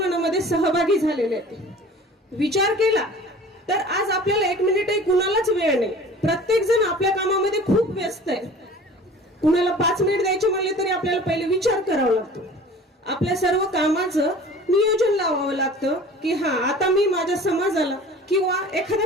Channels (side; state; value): both; normal; correlation 0.44